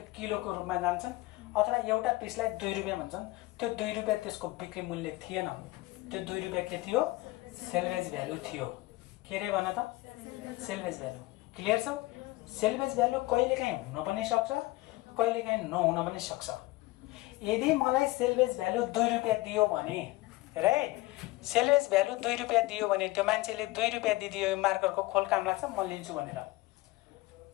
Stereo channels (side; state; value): right; quieter; 20.3 dB